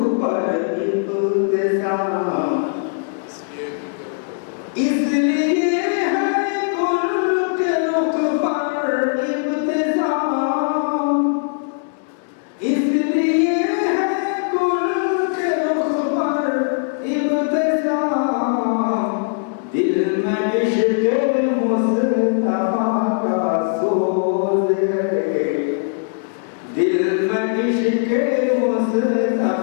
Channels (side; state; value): right; silent; 66 dB below the other